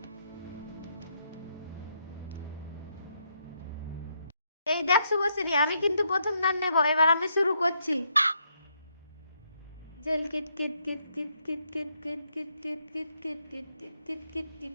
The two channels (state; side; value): inverted; both; correlation -0.76